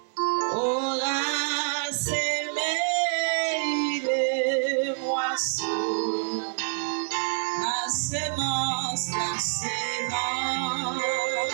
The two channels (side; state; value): left; silent; 58 dB below the other